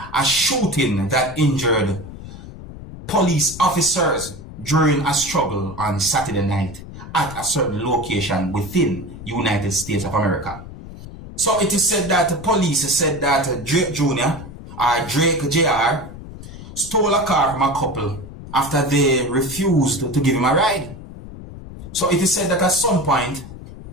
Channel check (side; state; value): left; noise; rumble, 13 dB below the sound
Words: a shooting that injured police officers during a struggle on Saturday night at a certain location within United States of America. So it is said that the police said that Drake Jr. or Drake JR stole a car from a couple after they refused to give him a ride. So it is said that at some point,